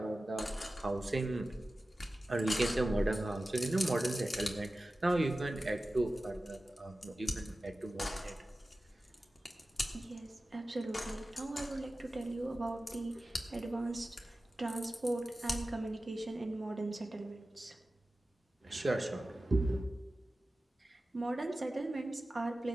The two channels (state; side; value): normal; both; correlation 0.95